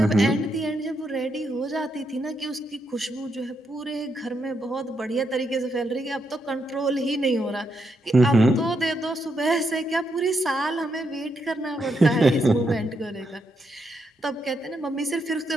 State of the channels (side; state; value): both; normal; correlation 0.80